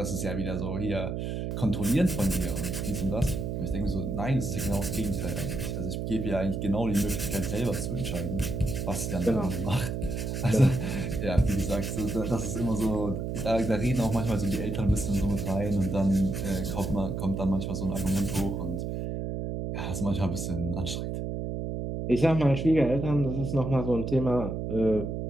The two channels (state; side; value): noise; right; hum, 3 dB below the sound